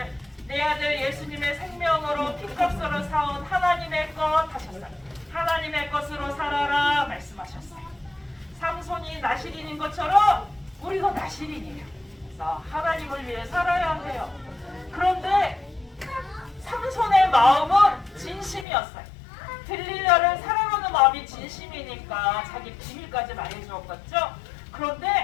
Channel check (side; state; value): right; drops out; at 18.7 s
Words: 내 아들 예수님의 생명으로 피값으로 사온 하나님의 것 하셨어요. 하나님의 것으로 살아라 말씀하셨어요. 삼손이 나실인인 것처럼 우리도 나실인이에요. 그래서 하나님을 위해 살아야 해요. 그런데 삼손의 마음은 진심이었어요. 들리려를 사랑하는 마음이 진심이니까 자기 비밀까지 말해주었겠죠.